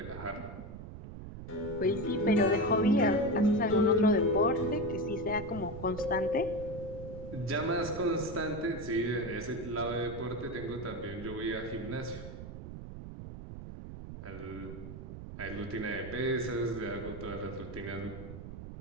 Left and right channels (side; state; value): right; noise; rumble, 11 dB below the sound